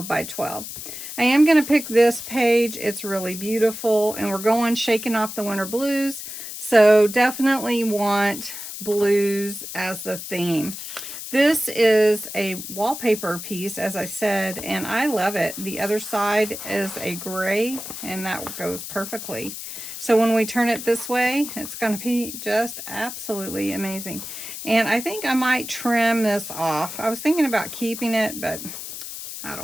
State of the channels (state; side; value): noise; left; hiss, 9 dB below the sound